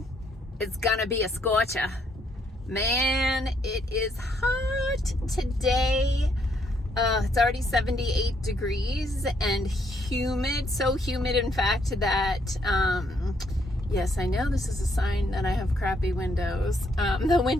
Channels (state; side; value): normal; both; correlation 0.71